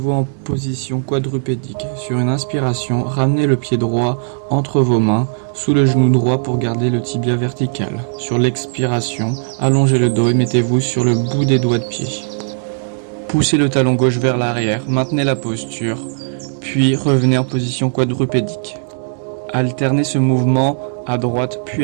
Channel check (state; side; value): silent; left; digital silence